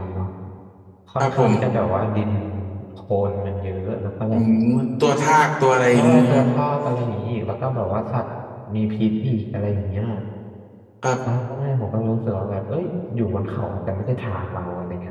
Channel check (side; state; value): both; identical; correlation 1.00